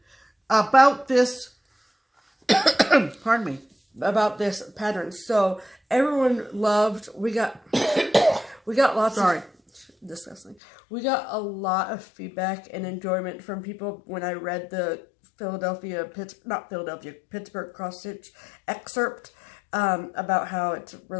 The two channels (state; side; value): drops out; right; at 10.6 s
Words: about this... Pardon me. About this pattern. So everyone loved... We got lots of... Disgusting. We got a lot of feedback and enjoyment from people when I read the Pittsburgh cross stitch excerpt about how it's